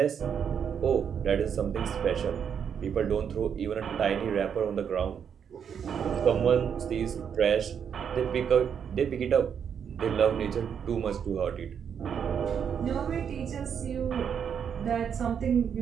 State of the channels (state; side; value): quieter; left; 7.7 dB